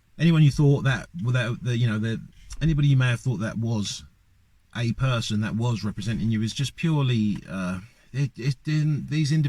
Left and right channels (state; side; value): identical; both; correlation 1.00